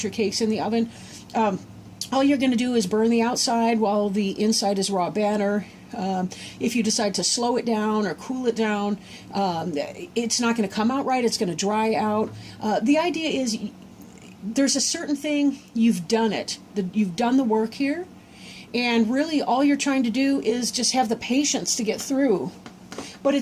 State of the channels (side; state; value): both; identical; correlation 1.00